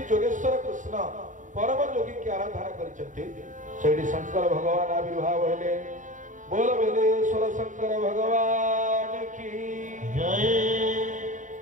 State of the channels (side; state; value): left; late; 0.37 ms